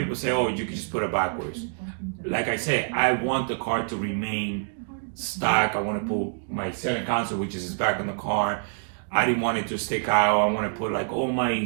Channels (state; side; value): silent; left; digital silence